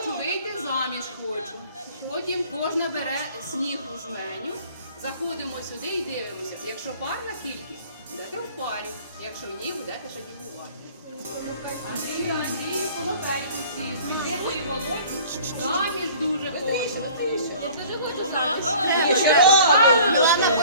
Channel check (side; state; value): both; inverted; correlation -0.49